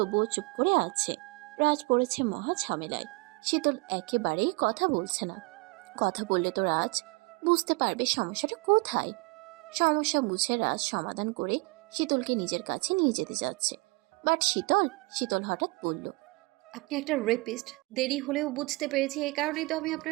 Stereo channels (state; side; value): quieter; left; 26.5 dB